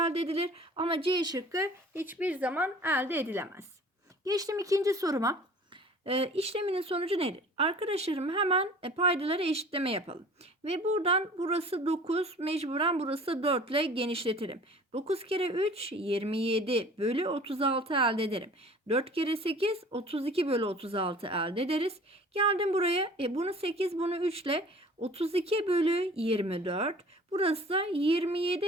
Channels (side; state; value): both; normal; correlation 0.47